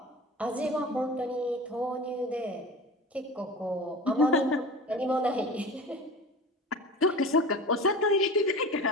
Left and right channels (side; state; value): both; normal; correlation 0.34